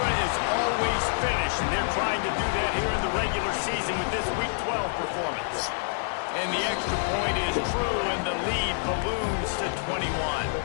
is always finish, and they're trying to do that here in the regular season with this Week 12 performance. And the extra point is true, and the lead balloons to 21.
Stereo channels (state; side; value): silent; right; digital silence